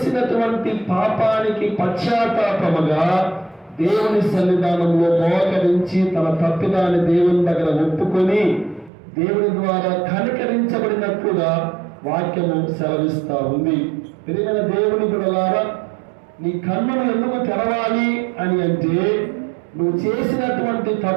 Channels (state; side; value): drops out; left; at 8.9 s